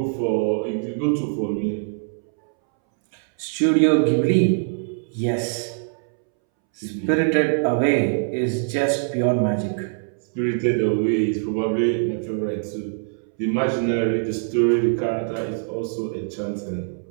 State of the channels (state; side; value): silent; left; 63 dB below the other